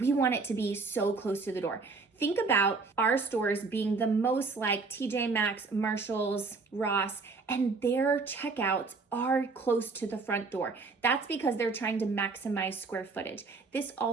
want it to be so close to the door. Think about our stores being the most like TJ Maxx, Marshalls, Ross, and their checkouts are close to the front door. That's because they're trying to maximize square footage. This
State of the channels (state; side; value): quieter; left; 4.2 dB